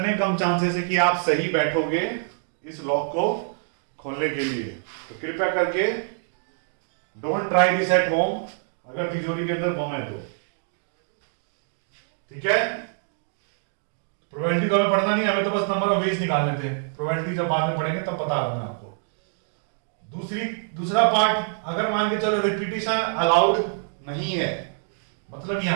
कम चांसेस है कि आप सही बैठोगे इस लॉक को खोलने के लिए। तो कृपया करके don't try this at home, अगर तिजोरी के अंदर बम है तो। ठीक है, प्रोबेबिलिटी तो हमें पढ़ना नहीं, हमें तो बस नंबर ऑफ वेज निकालने थे। प्रोबेबिलिटी जब बाद में पढ़ेंगे तब बता रहा हूं मैं आपको। दूसरा पार्ट, अगर मान के चलो रिपीटिशन अलाउड नहीं है, मतलब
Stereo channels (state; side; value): silent; left; digital silence